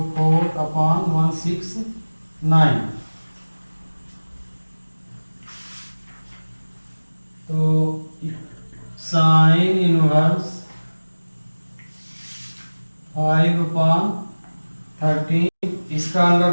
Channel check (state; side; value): inverted; both; correlation -1.00